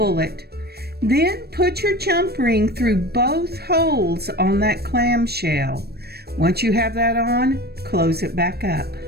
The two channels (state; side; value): late; left; 0.47 ms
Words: it. Then put your jump ring through both holes on that clamshell. Once you have that on, close it back up.